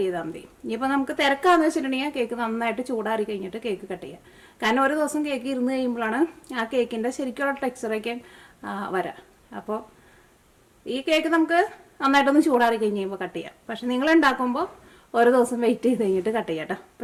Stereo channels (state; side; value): identical; both; correlation 1.00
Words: ചെയ്താൽ മതി. ഇനിയിപ്പോൾ നമുക്ക് തിരക്കാന്ന് വെച്ചിട്ടുണ്ടെങ്കിൽ കേക്ക് നന്നായിട്ട് ചൂടാറി കഴിഞ്ഞിട്ട് കേക്ക് കട്ട് ചെയ്യാം. കാരണം ഒരു ദിവസം കേക്ക് ഇരുന്ന് കഴിയുമ്പോഴാണ് ആ കേക്കിൻ്റെ ശരിക്കുള്ള ടെക്സ്ചറൊക്കെ വരാം. അപ്പോൾ ഈ കേക്ക് നമുക്ക് നന്നായിട്ടൊന്ന് ചൂടാറി കഴിഞ്ഞ് കഴിയുമ്പോൾ കട്ട് ചെയ്യാം. പക്ഷെ നിങ്ങൾ ഉണ്ടാക്കുമ്പോൾ ഒരു ദിവസം വെയിറ്റ് ചെയ്ത് കഴിഞ്ഞിട്ട് കട്ട് ചെയ്യാം കേട്ടോ.